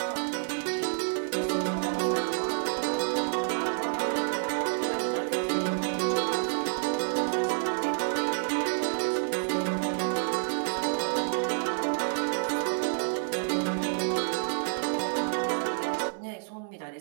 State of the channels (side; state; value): left; silent; 59 dB below the other